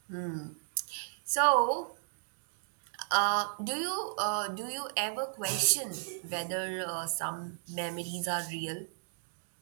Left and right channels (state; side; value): silent; left; digital silence